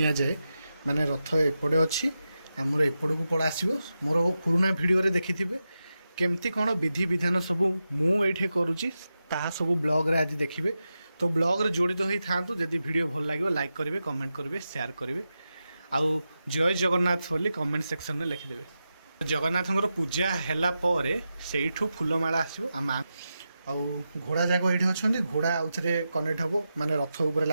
जाए माने रथ एपटे अच्छी आमर एपट को पड़ा आसो मोर पुराना भिडियो देखि केमती कौन विधि विधान सब मुझे करुच्ची ताहा सब ब्लॉग रे आज देखिए। तो ब्लॉग रे जोड़ित हो था जदि वीडियो भल लगे लाइक करेंगे, कमेंट करेंगे, शेयर करेंगे आउ जय जगन्नाथ बोली कमेंट सेक्शन में लिखिदेवे। जगन्नाथ पूजा है से फूलमाला आसो आम आउ घोड़ा जाक ये अच्छा घोड़ा आउ थे कनेक्ट हम माने रथ उपर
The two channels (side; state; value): both; inverted; correlation -0.90